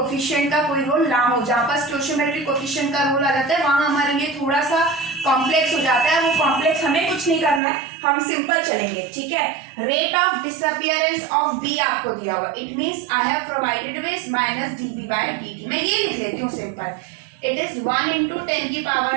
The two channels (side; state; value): left; drops out; at 7.6 s